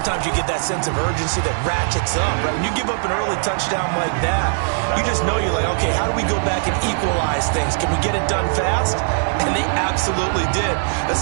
you get that sense of urgency that ratchets up, right? When you give up an early touchdown like that, you just know you're like, okay, how do we go back and equalize things? Can we get it done fast? And they absolutely did.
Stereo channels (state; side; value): silent; left; digital silence